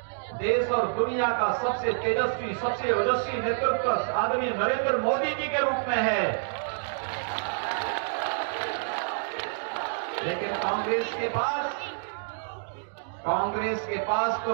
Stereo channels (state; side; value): silent; left; digital silence